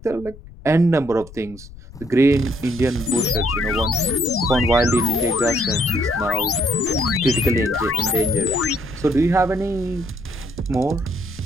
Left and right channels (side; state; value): left; noise; rumble, 18 dB below the sound